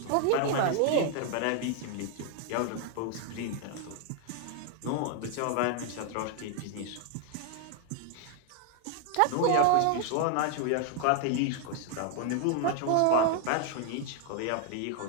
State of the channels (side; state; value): both; different; correlation 0.00